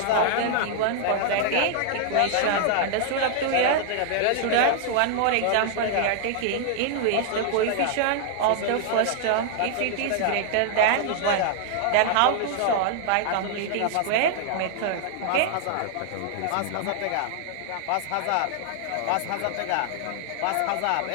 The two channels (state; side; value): different; both; correlation -0.01